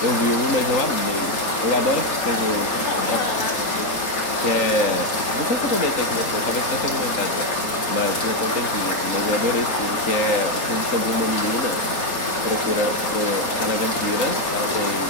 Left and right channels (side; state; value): right; late; 4.3 ms